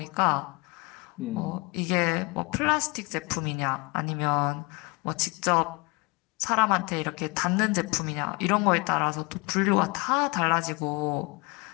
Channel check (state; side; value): quieter; right; 27.2 dB